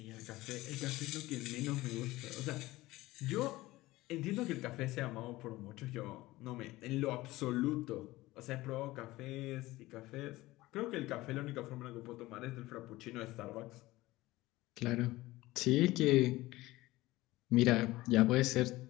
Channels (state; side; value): quieter; right; 18.5 dB